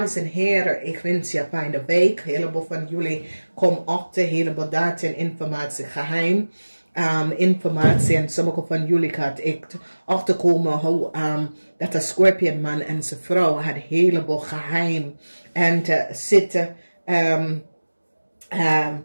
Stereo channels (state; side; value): inverted; both; correlation -1.00